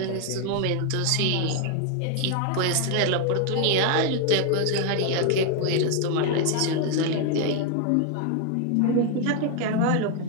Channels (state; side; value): different; both; correlation 0.01